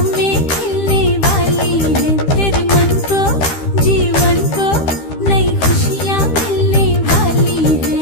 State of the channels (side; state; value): right; late; 13 ms